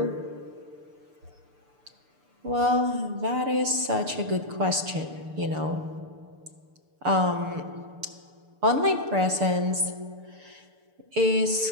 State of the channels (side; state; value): left; late; 6.8 ms